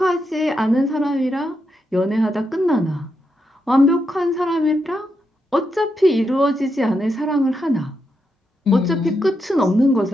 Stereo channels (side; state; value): both; normal; correlation 0.83